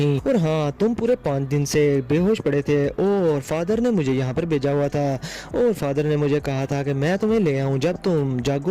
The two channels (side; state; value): both; identical; correlation 1.00